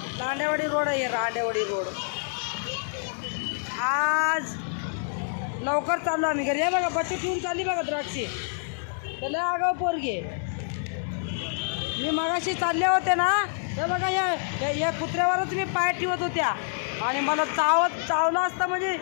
रांडेवाडी रोड आहे. रांडेवाडी रोड. आज लवकर चाललो आम्ही घरी. हे बघा बच्चू ठेवून चालली बघा द्राक्षी. त्याला आगाव पोरगी. मी मगाशी चालले होते ना, हे बघा या कुत्र्यावरच मी पाय ठेवत होत्या. आणि मला चावलं असतं म्हणजे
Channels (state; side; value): silent; right; 60 dB below the other